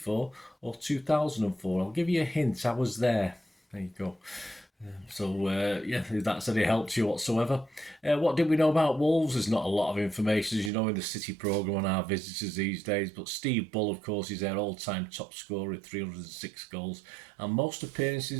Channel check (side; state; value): left; drops out; at 10.7 s